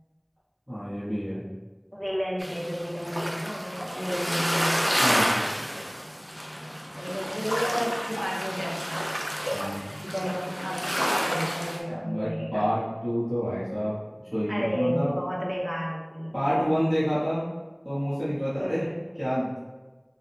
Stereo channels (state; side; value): identical; both; correlation 1.00